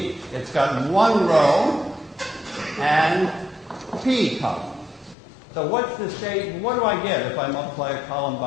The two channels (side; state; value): right; drops out; at 5.2 s